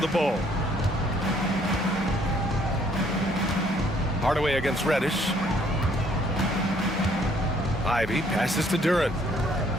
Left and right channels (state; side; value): normal; both; correlation 0.64